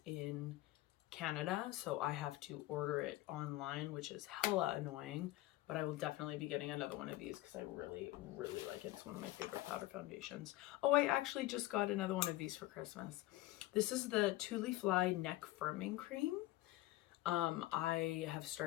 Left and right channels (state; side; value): quieter; right; 17.1 dB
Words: in Canada, so I have to order it online, which is hella annoying, but I will definitely be getting another one of these because I really, really like it. It's one of my favorite powder foundations. Oh, I actually just got another one of these for Christmas. This is the Tule Fly Neck Firming Cream. I have